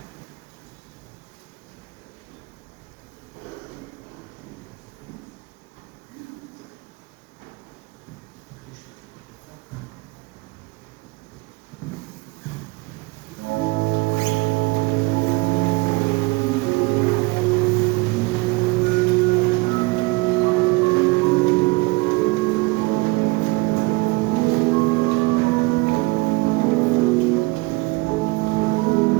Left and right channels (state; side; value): quieter; left; 24.7 dB